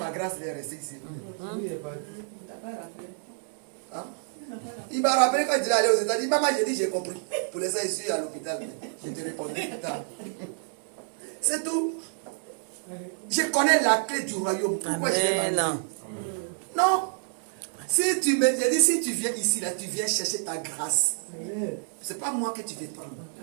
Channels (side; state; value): left; silent; 59 dB below the other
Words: grâce, elle est restée ici. Hein? Il m'a rappelé quand il est allé aux États-Unis. Maman, j'ai dit, j'ai compris. Pour les ça, je suis à l'hôpital. Je te répondrai plus tard. C'est tout. Je connais la clé du royaume. Pourquoi je l'ai pas? Non. Si tu viens ici, là, tu viens chercher ta grâce. C'est pas moi que tu veux prendre.